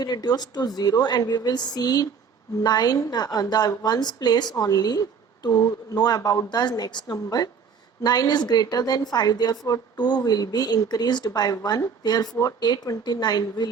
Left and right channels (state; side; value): quieter; left; 6.1 dB